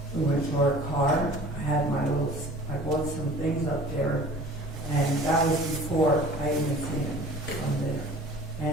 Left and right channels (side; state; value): both; normal; correlation 0.45